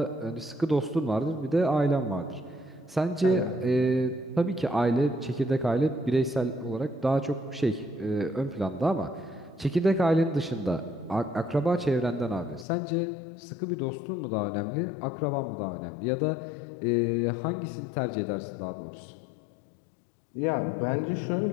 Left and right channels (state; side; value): drops out; right; at 12.7 s